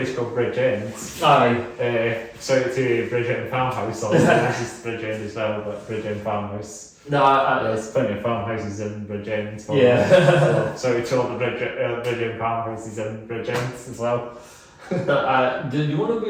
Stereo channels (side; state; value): both; identical; correlation 1.00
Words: called Bridgend. Shout out to Bridgend Farmhouse. This is Bridgend as well, but Bridgend Farmhouse. There's plenty of farmhouses in Bridgend. So we told the Bridgend farmhouses in Bridgend as well.